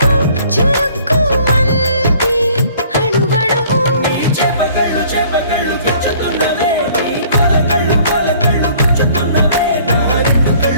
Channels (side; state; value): both; inverted; correlation -0.55